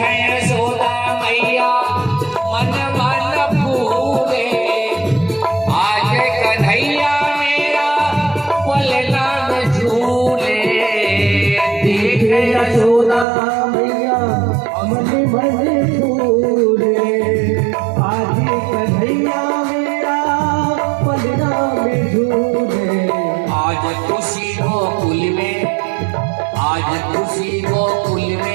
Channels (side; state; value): left; drops out; at 13.2 s